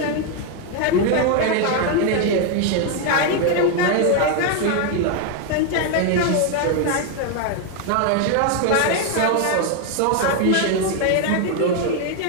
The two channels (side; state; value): both; different; correlation 0.01